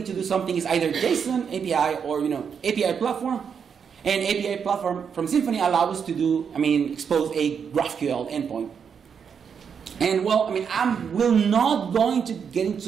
to do something, it's either JSON, API, or API platform. And API platform from Symfony allows us to do, expose a GraphQL endpoint. And well, I will not going to get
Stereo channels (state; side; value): quieter; left; 6.9 dB